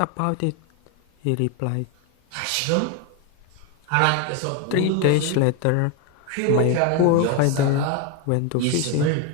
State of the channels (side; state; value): both; different; correlation 0.02